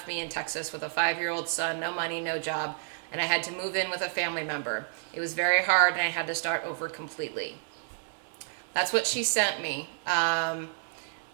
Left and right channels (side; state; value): left; silent; 58 dB below the other